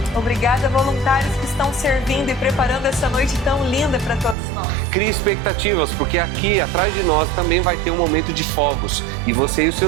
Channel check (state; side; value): drops out; left; at 4.4 s